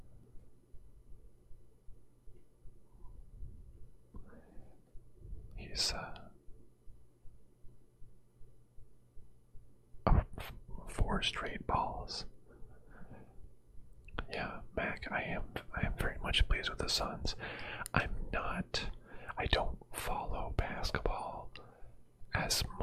He's 4 straight balls. Yeah, Mac, I am very much pleased with the Suns. I don't follow basketball as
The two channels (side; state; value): both; identical; correlation 1.00